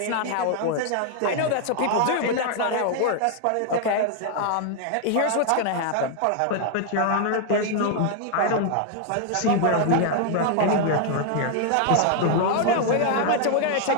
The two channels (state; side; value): different; both; correlation 0.00